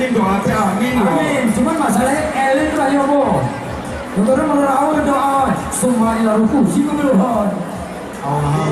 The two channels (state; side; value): identical; both; correlation 1.00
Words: doa Amin. Amin. Cuman masalahnya elit lah ya bo. Untuk merawat doa semua ila ruku sih kebeluhan.